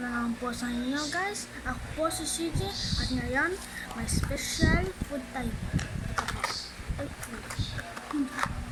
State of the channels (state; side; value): identical; both; correlation 1.00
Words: na naman po sa inyo guys. Ako po si CJ at ngayon may special food tayo.